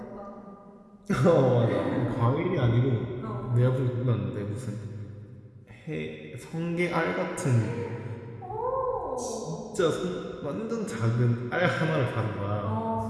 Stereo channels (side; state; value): both; identical; correlation 1.00